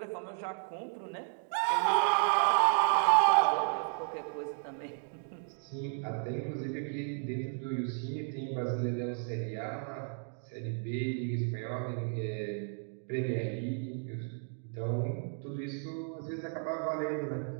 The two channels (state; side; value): silent; left; 55 dB below the other